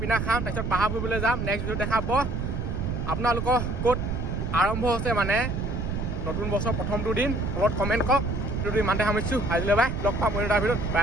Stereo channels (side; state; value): right; noise; rumble, 2 dB below the sound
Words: খাম, তাৰপিছত পাহাৰ ফুৰিবলৈ যাম। নেক্সট ভিডিঅ' দেখাব আপোনালোকৰ ক'ত আৰম্ভ হৈছে মানে নতুন বছৰ প্ৰথমটো দিন। তলত কমেণ্ট কৰক। ভিডিঅ'টো ইমানতে সামৰিছোঁ। আজিলৈ বাই, লগ পাম অন্য এটা ভিডিঅ'ত। Bye